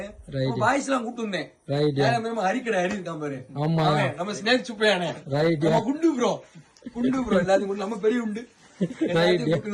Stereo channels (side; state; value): both; identical; correlation 1.00